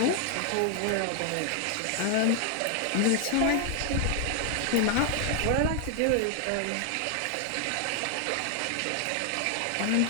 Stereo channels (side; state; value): both; different; correlation 0.00